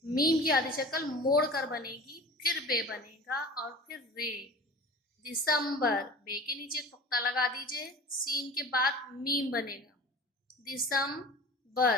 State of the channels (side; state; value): both; normal; correlation 0.38